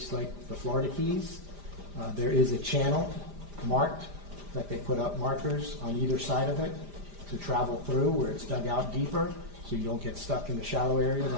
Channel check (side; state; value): left; late; 5.0 ms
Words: like the Florida Keys. There is a channel marked that they put up markers on either side of it to travel through where it's dug out deeper so you don't get stuck in the shallow areas